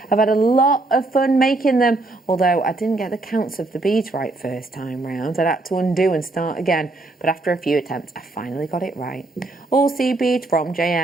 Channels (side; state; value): left; quieter; 3.1 dB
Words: I've had a lot of fun making them, although I didn't get the counts of the beads right first time round. I'd had to undo and start again, but after a few attempts, I finally got it right. All seed beads from